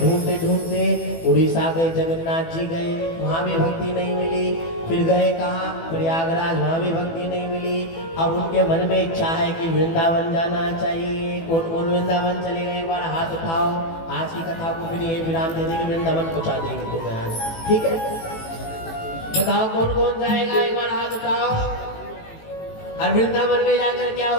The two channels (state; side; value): late; right; 18 ms